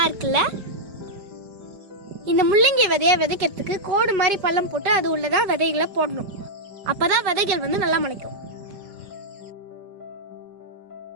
இருக்குல்ல. இந்த முள்ளங்கி விதையை விதைக்கிறதுக்கு கோடு மாதிரி பள்ளம் போட்டு அது உள்ளதான் விதைகளை போடணும். அப்பதான் விதைகள் நல்லா முளைக்கும்.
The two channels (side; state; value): left; late; 5.0 ms